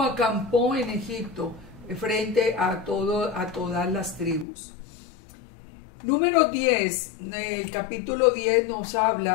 acampó en Egipto frente a todas las tribus. Número 10, el capítulo 10 nos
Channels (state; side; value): drops out; right; at 4.5 s